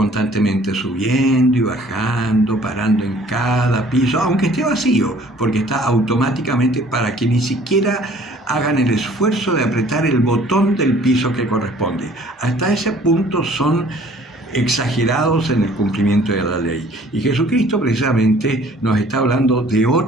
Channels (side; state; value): both; normal; correlation 0.55